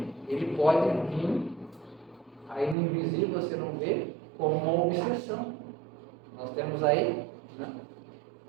ele pode vir, aí no invisível você não vê, como uma obsessão. Nós temos aí, né?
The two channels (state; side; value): drops out; left; at 2.8 s